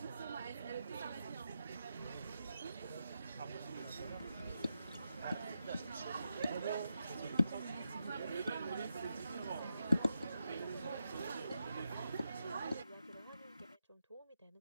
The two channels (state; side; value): inverted; both; correlation -0.87